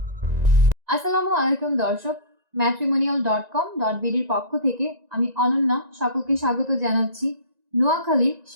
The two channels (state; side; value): late; left; 1.9 ms